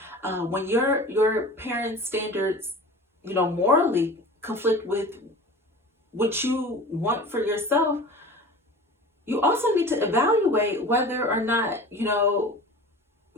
When your parents' standards, morally conflict with what you want for yourself, you also need to evaluate whether or not,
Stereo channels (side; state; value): both; normal; correlation 0.37